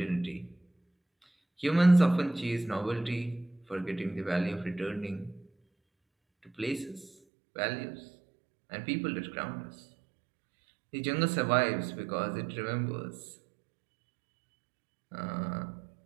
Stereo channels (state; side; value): drops out; left; at 7.1 s